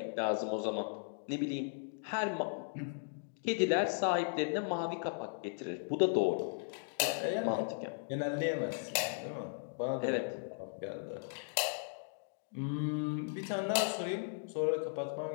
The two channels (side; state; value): right; silent; digital silence